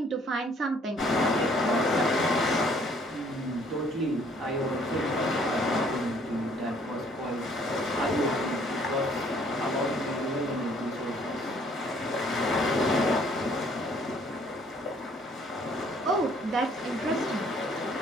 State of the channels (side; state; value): both; normal; correlation 0.61